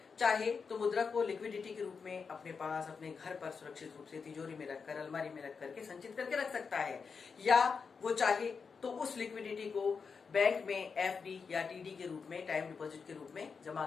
चाहे तो मुद्रा को लिक्विडिटी के रूप में अपने पास अपने घर पर सुरक्षित रूप से तिजोरी में रखकर, अलमारी में रख करके संचित करके रख सकता है, या वो चाहे तो उस लिक्विडिटी को बैंक में एफडी या टीडी के रूप में, टाइम डिपॉजिट के रूप में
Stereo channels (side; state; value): right; quieter; 5.5 dB